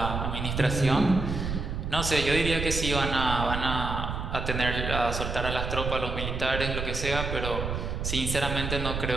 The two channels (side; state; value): right; noise; rumble, 3 dB below the sound